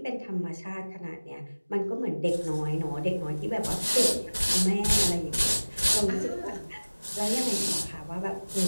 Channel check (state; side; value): inverted; both; correlation -1.00